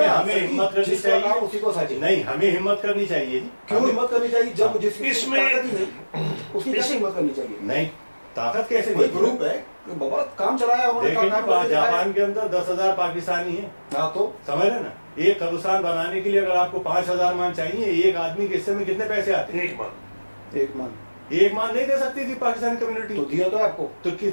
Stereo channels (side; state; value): both; inverted; correlation -1.00